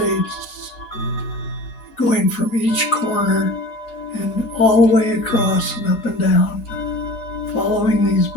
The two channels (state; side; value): late; right; 4.8 ms